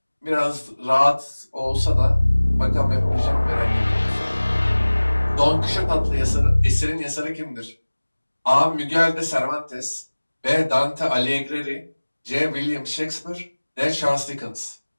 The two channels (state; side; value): inverted; both; correlation -1.00